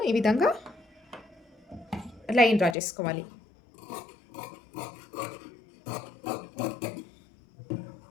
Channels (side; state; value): right; drops out; at 2.8 s